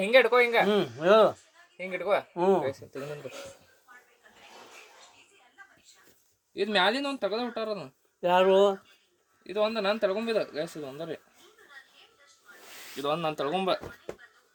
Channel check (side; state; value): both; identical; correlation 1.00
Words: ಹಿಂಗೆ ಇಟ್ಕೋ ಹಿಂಗೆ ಹೇಳು ಹಿಂಗೆ ಇಟ್ಕೋ ಇದು ಮ್ಯಾಲಿಂದ ಒಂದು ತೆಗೆದು ಬಿಟ್ಟಾರ ಅದನ್ನ ಯಾರು ಇದು ಒಂದು ನಾನು ತಳ್ಕೊಂಬಿದ ಗ್ಯಾಸ್ ಇದು ಒಂದರಿ ಇದು ಒಂದು ನಾನು ತಳ್ಕೊಂಬ